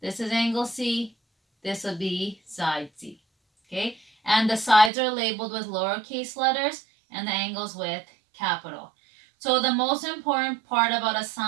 This is angle C. This will be side C. Okay? And the sides are labeled with lowercase letters and the angles with capital. So the most important part about a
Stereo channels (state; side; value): drops out; left; at 4.9 s